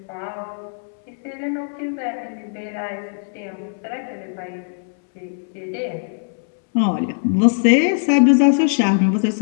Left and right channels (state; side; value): silent; right; 65 dB below the other